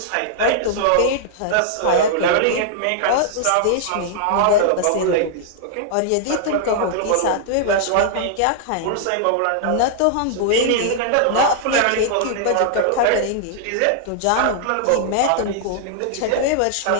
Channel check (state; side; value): different; both; correlation -0.01